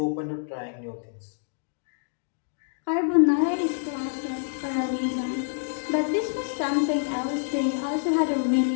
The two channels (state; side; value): silent; right; digital silence